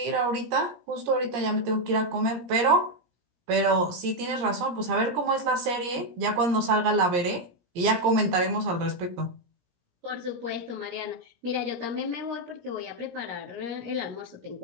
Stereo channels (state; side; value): late; left; 17 ms